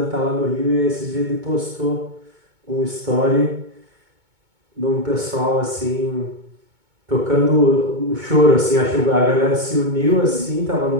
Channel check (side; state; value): left; late; 2.2 ms